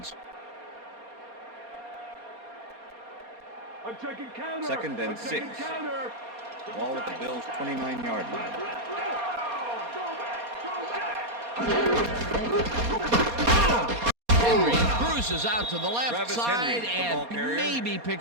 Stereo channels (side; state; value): left; late; 4.2 ms